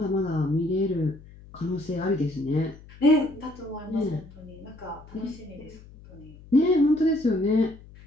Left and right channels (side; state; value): left; noise; hum, 20 dB below the sound